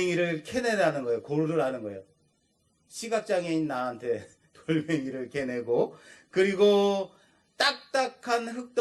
캐내라는 거예요. 고르라는 거예요. 시각장애인 나한테 돌멩이를 캐내고 그리고 딱딱한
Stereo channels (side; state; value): both; identical; correlation 1.00